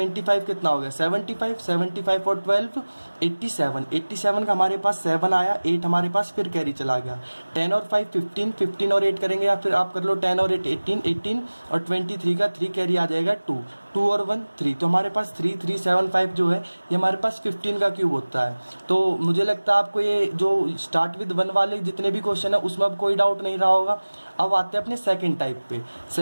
कितना हो गया, 75, 75 और 12 87, 87 का हमारे पास 7 आया, 8 हमारे पास फिर कैरी चला गया। 10 और 5 15, 15 और 8 करेंगे, या फिर आप कर लो 10 और 8 18, 18 और 23 का 3 कैरी आ जाएगा 2, 2 और 1 3। तो हमारे पास 3375 जो है ये हमारे पास 15 का क्यूब होता है। तो मुझे लगता है आपको ये जो स्टार्ट विद 1 वाले जितने भी क्वेश्चन है उसमें अब कोई डाउट नहीं रहा होगा। अब आते हैं अपने सेकंड टाइप पे।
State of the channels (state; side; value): inverted; both; correlation -1.00